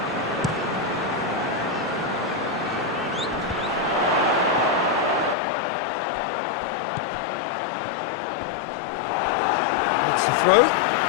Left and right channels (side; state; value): right; drops out; at 5.4 s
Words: That's the throw.